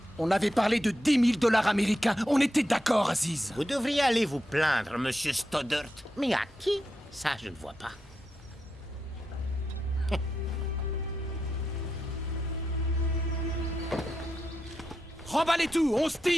On avait parlé de 10 000 $ américains. On était d'accord, Aziz. Vous devriez aller vous plaindre, monsieur Stoddart. Mais à qui? Ça, je ne vois pas. Remballez tout, on se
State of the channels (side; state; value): both; normal; correlation 0.86